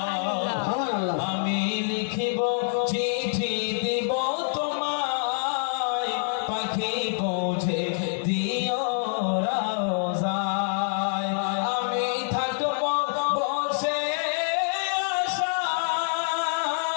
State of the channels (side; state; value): right; silent; digital silence